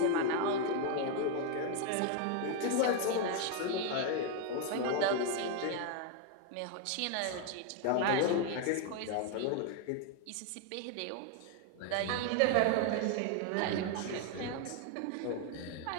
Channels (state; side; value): different; both; correlation 0.01